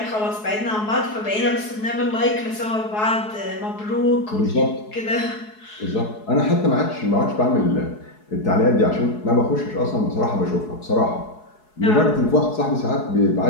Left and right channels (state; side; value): late; right; 4.7 ms